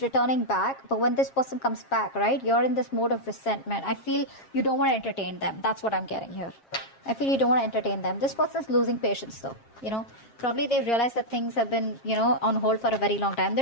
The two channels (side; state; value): right; late; 7.4 ms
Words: back. But when this person comes back, right, you're in this mode of resentment. I feel you don't want to entertain them. That's what I'm getting here. I feel you don't want to entertain them. This person's losing patience though. Probably they realize that things have been, on hold for a very long time.